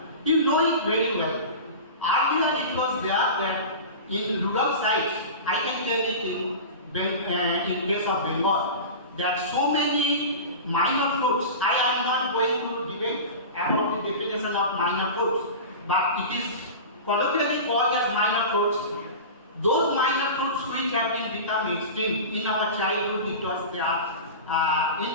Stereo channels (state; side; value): inverted; both; correlation -0.30